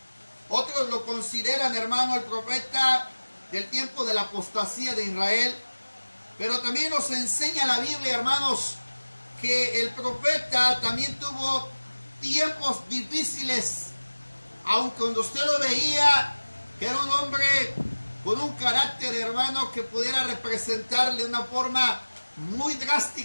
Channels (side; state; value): both; inverted; correlation -1.00